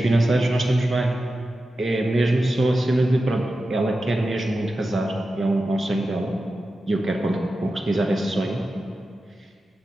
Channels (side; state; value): both; normal; correlation 0.92